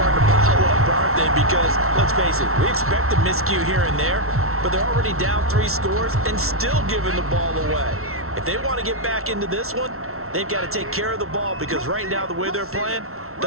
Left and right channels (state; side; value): late; left; 0.63 ms